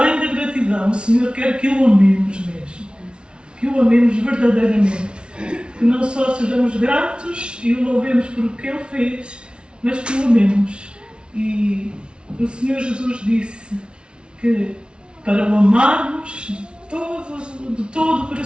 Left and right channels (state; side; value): late; left; 0.057 ms